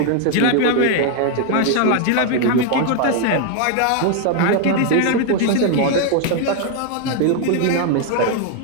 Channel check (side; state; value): both; different; correlation 0.00